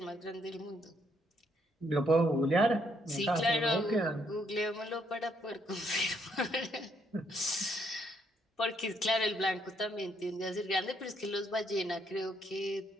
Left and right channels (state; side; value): normal; both; correlation 0.72